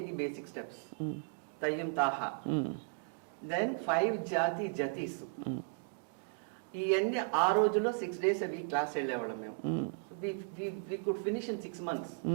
basic steps. తయ్యం తాహా, దెన్ 5 జాతి జతీస్. ఇవన్నీ ఆ రోజుల్లో 6 days a week క్లాస్ వెళ్ళేవాళ్ళం మేము. So we could finish in 6 months.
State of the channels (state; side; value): silent; left; digital silence